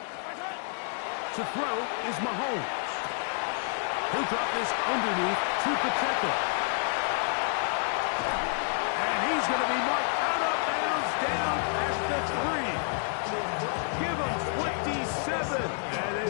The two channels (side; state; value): right; silent; 58 dB below the other